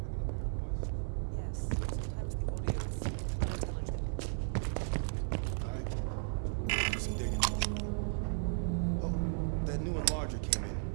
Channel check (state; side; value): silent; left; 54 dB below the other